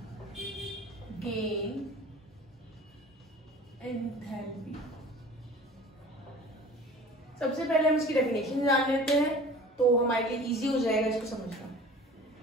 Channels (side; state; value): both; normal; correlation 0.43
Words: gain enthalpy. सबसे पहले हम इसकी डेफिनेशन जान लेते हैं तो हमारे लिए इजी हो जाएगा इसको समझना।